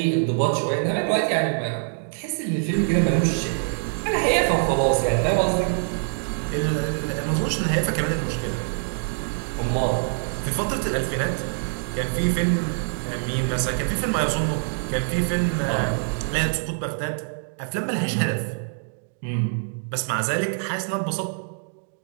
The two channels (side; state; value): left; silent; digital silence